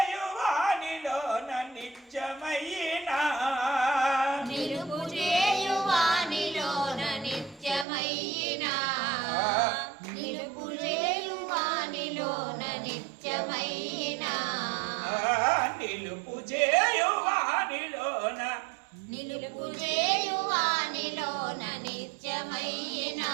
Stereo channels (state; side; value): drops out; left; at 7.9 s